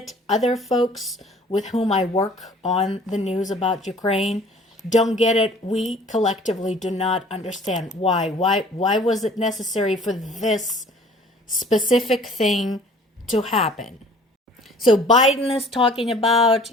Other folks with whom I work on the news about Ukraine don't get it. We collectively do not understand why. Why was it necessary for this specific thing to happen? So Biden is talking about,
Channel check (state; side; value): normal; both; correlation 0.52